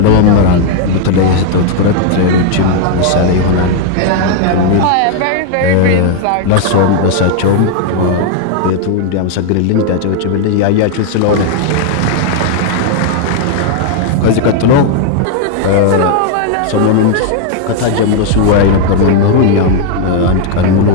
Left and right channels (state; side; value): different; both; correlation 0.00